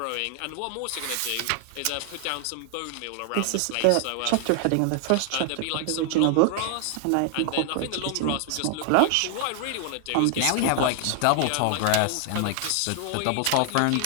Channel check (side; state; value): both; different; correlation 0.00